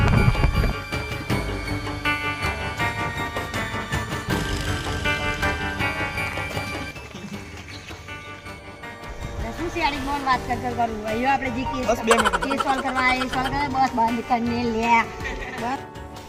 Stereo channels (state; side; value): identical; both; correlation 1.00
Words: बात कर करूँ वही आपने जी केस बस 2 मिनट केस सॉल्व करवाए बस बंद करने लिया बस